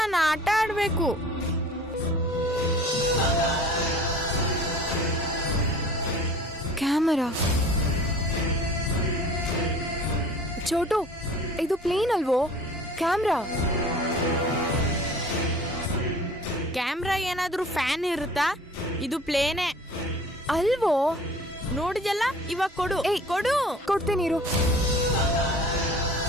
ಆಟ ಆಡ್ಬೇಕು. ಕ್ಯಾಮರಾ. ಚೋಟು, ಇದು ಪ್ಲೇನ್ ಅಲ್ವೋ? ಕ್ಯಾಮ್ರಾ. ಕ್ಯಾಮ್ರಾ ಏನಾದ್ರೂ ಫ್ಯಾನ್ ಇರುತ್ತಾ? ಇದು ಪ್ಲೇನೇ ಅಲ್ವೋ? ನೋಡಿದಲ್ಲ, ಇವಾಗ ಕೊಡು. ಏಯ್, ಕೊಡು. ಕೊಡ್ತೀನಿ ಇರು.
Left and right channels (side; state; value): both; normal; correlation 0.45